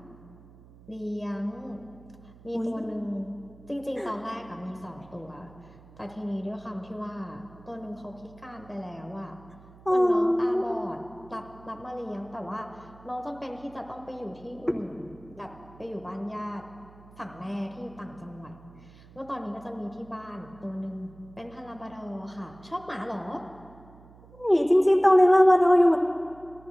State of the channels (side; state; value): right; noise; hum, 22 dB below the sound